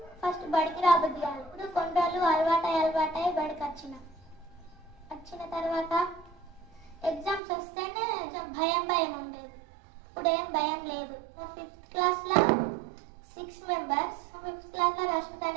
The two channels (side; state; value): left; drops out; at 7.4 s